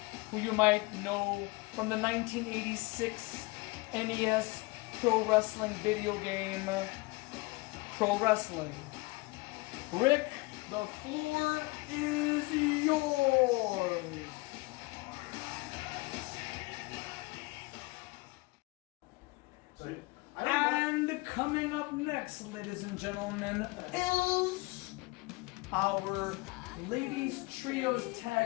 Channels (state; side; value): quieter; right; 24.9 dB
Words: who you might know from the 1986 NES Pro Wrestling video game, Pro Wrestling. Rick, the floor is yours. And coming up next, ladies and gentlemen, is our ladies trios